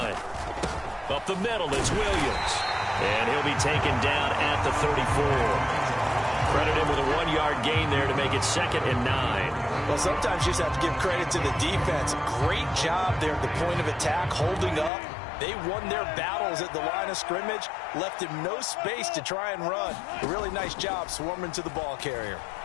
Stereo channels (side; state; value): right; drops out; at 14.9 s